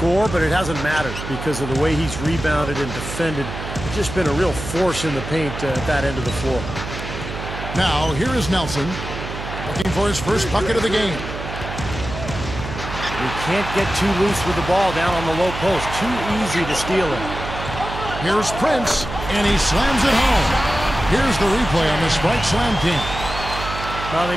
but it hasn't mattered because of the way he's rebounded and defended. It's just been a real force in the paint at that end of the floor. Now, here is Nelson, looking for his first bucket of the game. We can't get too loose with the ball down on the low post. Too easy to steal it. Here's Prince, and he slams it home. Here's the replay on the Spike Slam King. Well,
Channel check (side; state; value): right; noise; hum, 8 dB below the sound